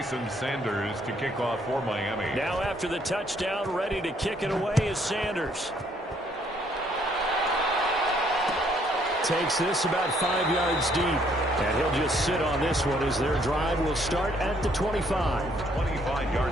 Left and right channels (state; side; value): normal; both; correlation 0.67